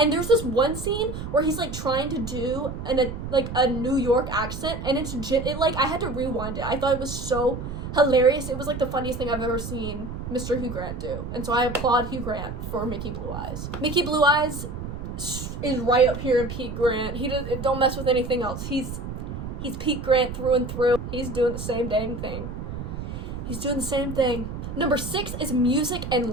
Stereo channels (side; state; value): right; noise; rumble, 7 dB below the sound